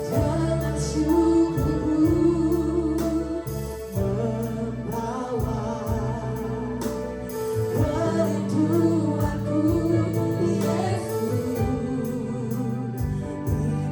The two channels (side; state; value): both; identical; correlation 1.00